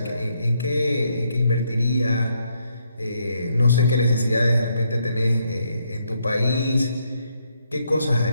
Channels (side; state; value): both; inverted; correlation -0.75